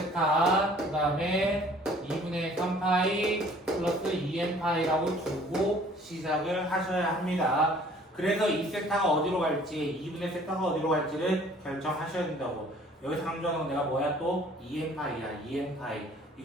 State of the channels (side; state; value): both; normal; correlation 0.54